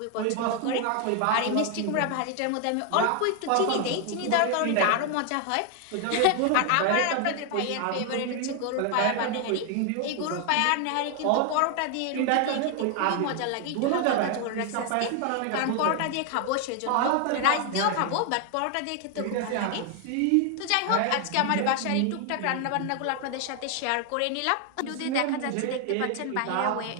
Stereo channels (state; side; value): different; both; correlation 0.00